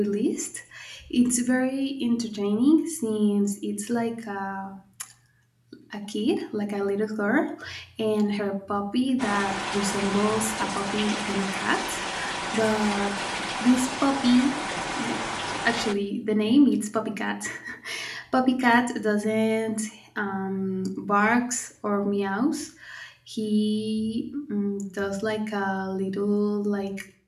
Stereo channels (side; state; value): both; identical; correlation 1.00